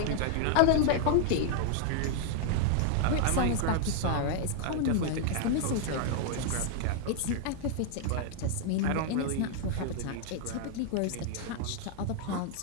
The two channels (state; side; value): different; both; correlation 0.00